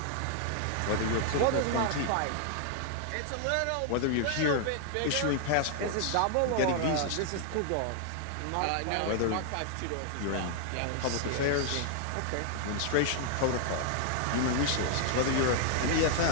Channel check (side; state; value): both; different; correlation 0.00